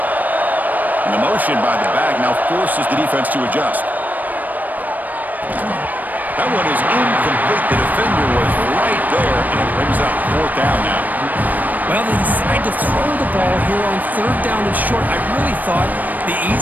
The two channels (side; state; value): left; late; 0.083 ms